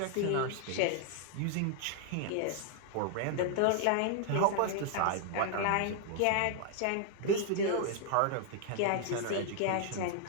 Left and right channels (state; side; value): different; both; correlation 0.00